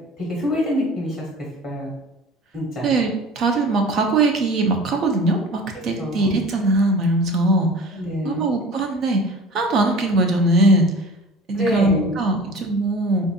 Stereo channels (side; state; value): both; normal; correlation 0.41